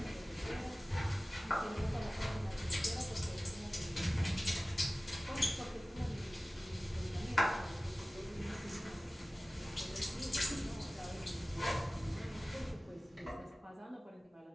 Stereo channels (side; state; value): both; normal; correlation 0.97